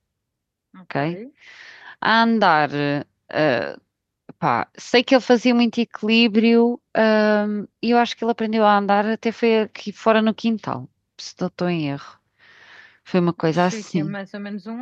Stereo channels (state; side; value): identical; both; correlation 1.00